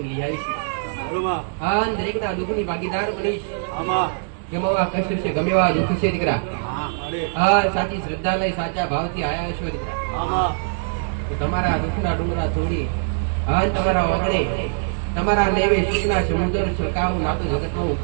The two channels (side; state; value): left; silent; digital silence